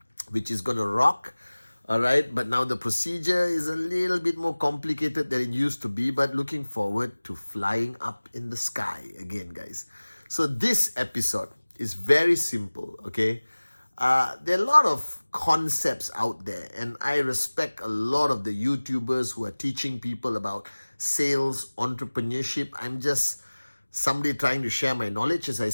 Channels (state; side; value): inverted; both; correlation -1.00